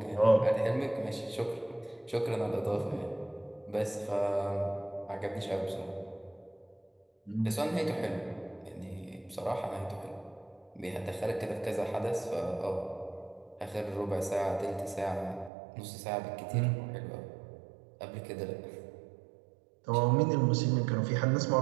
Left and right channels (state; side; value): drops out; left; at 15.5 s